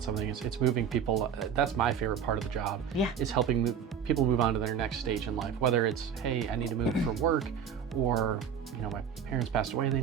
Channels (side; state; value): left; quieter; 7.7 dB